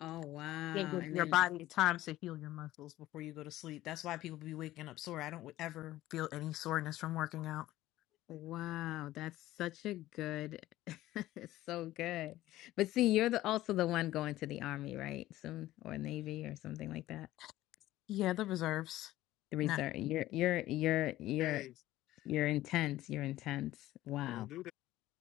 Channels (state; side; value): quieter; right; 15.5 dB